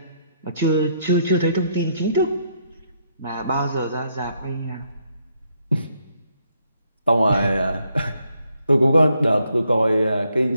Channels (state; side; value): inverted; both; correlation -0.74